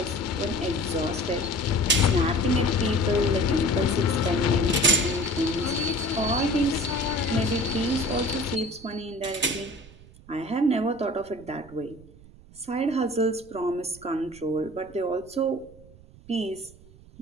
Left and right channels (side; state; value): right; noise; rumble, 22 dB below the sound